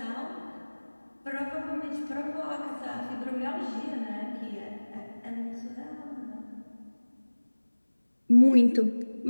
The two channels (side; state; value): both; inverted; correlation -1.00